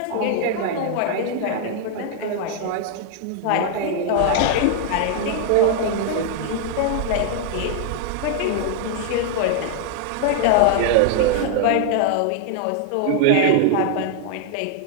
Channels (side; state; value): both; different; correlation 0.00